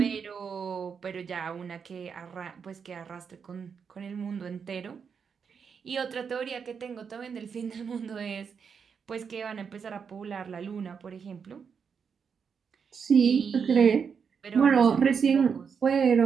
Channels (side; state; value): left; quieter; 6.4 dB